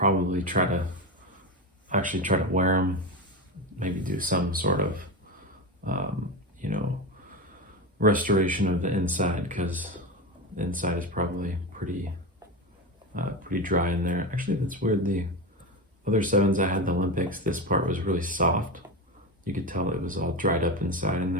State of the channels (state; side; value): normal; both; correlation 0.19